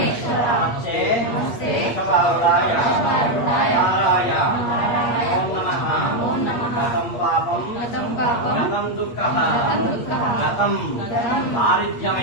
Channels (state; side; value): late; right; 8.5 ms